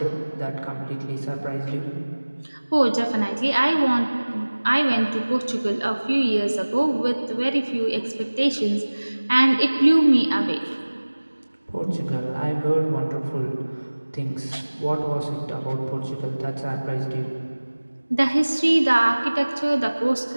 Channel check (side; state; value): both; inverted; correlation -1.00